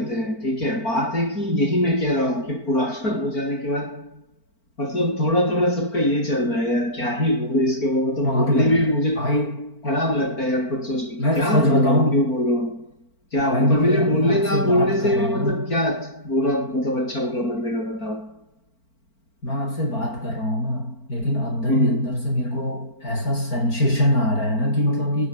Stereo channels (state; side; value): late; right; 4.4 ms